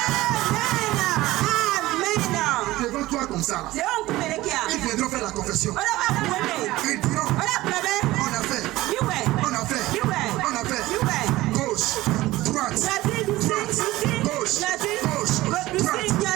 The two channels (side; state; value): left; quieter; 17.7 dB